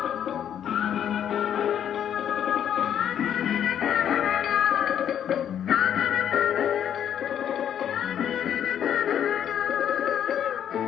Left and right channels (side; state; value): right; quieter; 9.6 dB